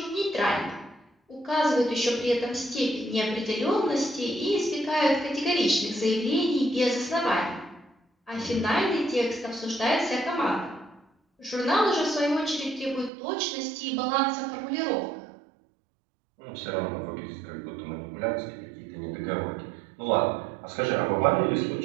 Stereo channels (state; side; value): drops out; left; at 13.1 s